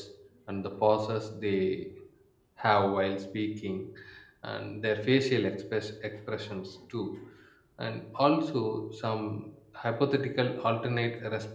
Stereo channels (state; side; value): identical; both; correlation 1.00